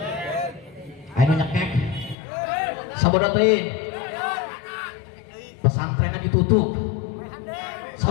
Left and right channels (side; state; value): right; drops out; at 2.1 s